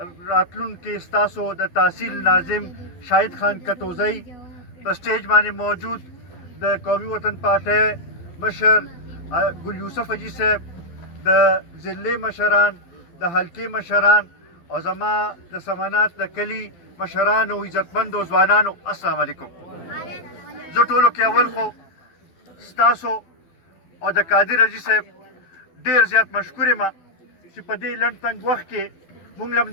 के स्तासो द तहसील नाजिम शाहिद खान कतोजई स्टेज माने मौजूद द कौमी वतन पार्टी मशर गुल यूसुफ अजी साहब द जिले मशरान द हल्के मशरान और जमा द समानात द कली मशरान और इज्जतमंद और जवानान अस्सलाम वालेकुम। जो टोलो के अवल को स्तासो और द कादिर अजी साहब ढेर ज़्यादा मशकूर मा कि पदे लंड तंग वक्त के मुंगलम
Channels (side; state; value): right; late; 12 ms